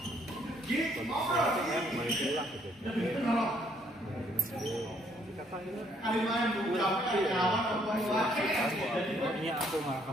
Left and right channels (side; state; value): both; normal; correlation 0.67